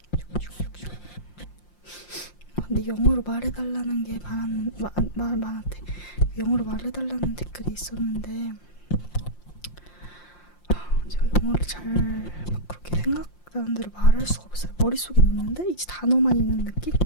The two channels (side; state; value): right; late; 5.7 ms